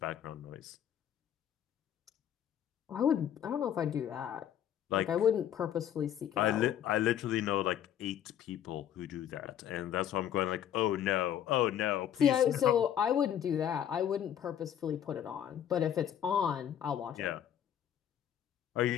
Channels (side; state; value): right; quieter; 10.0 dB